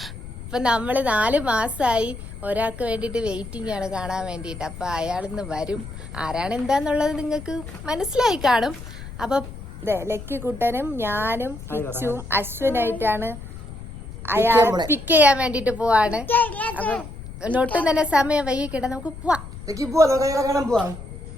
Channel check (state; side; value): noise; left; rumble, 12 dB below the sound